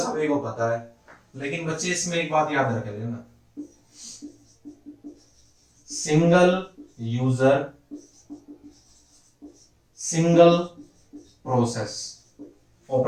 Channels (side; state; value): both; identical; correlation 1.00